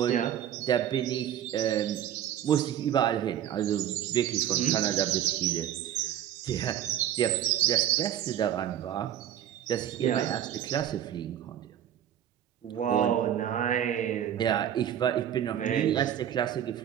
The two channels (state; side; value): quieter; left; 10.6 dB